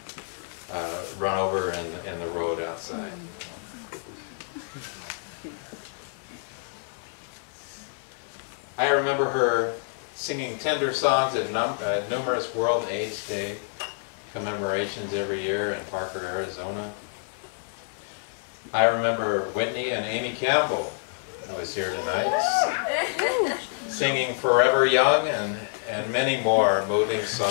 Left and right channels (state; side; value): silent; right; digital silence